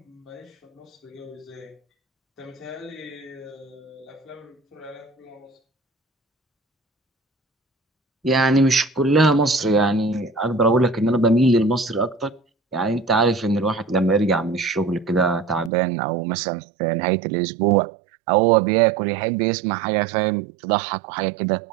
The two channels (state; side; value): drops out; left; at 15.7 s